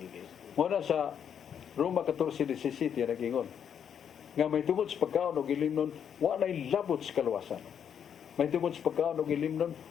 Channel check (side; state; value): right; quieter; 8.2 dB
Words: Muna sa Roma 14:17 nagingon nga may tungod sa pagkaon og ilimnon wa nay labot sa kaluwasan. May tungod sa pagkaon og ilimnon